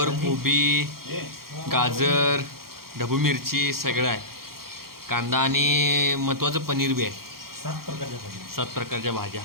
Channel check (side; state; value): left; late; 0.93 ms